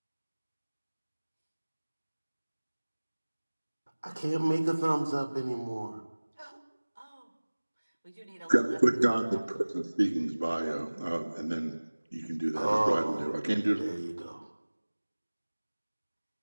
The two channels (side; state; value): both; inverted; correlation -1.00